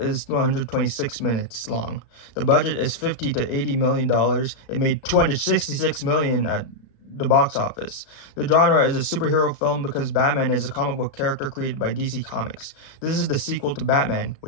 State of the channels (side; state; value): right; late; 36 ms